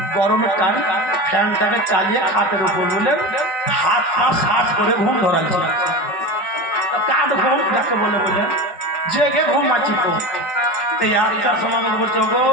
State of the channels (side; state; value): right; late; 5.4 ms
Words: গরমের টাইম ফ্যানটাকে চালিয়ে খাটের উপর বললেন হাত পা শার্ট করে ঘুম ধরাচ্ছি। কাঠ ঘুম যাকে বলে বললেন জেগে ঘুমাচ্ছি। তো এই 8টার সময় আমাকে বলছে গো